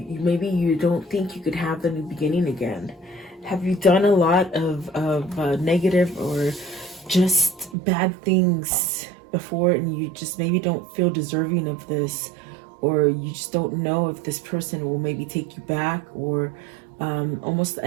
maybe you don't think you could have the new beginning again. Have you done a lot of negative or just bad things before, and you just maybe don't feel deserving of this, or you just don't know if this person will maybe take you back, or almost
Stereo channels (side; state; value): left; drops out; at 7.8 s